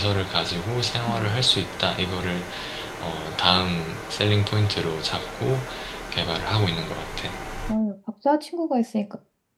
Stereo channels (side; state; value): both; identical; correlation 1.00